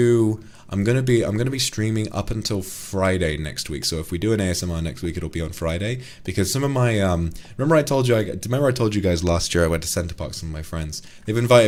be streaming up until Friday next week. So if we do an ASMR next week, it'll be on Friday, because some of my remember I told you guys last year I went to Center Parks with my friends. They've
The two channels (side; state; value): both; identical; correlation 1.00